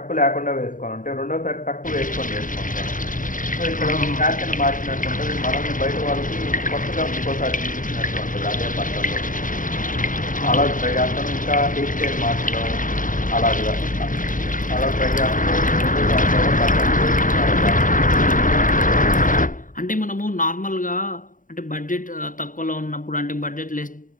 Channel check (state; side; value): late; right; 0.39 ms